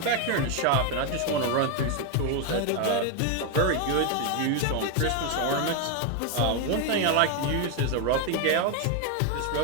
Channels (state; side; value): different; both; correlation 0.01